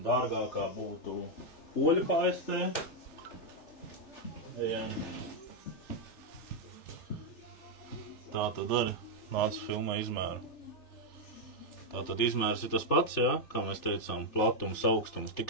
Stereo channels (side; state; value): right; late; 3.4 ms